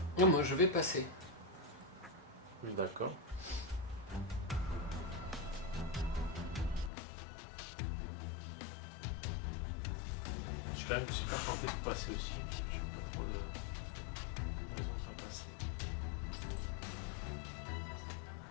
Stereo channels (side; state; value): right; drops out; at 6.9 s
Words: Non, moi je vais passer. D'accord. Je suis quand même super tenté de passer aussi. Parce que je sais pas trop la raison de pas passer.